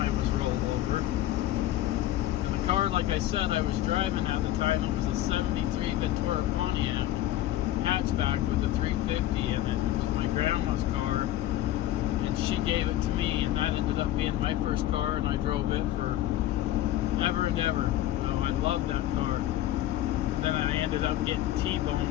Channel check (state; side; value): quieter; right; 13.9 dB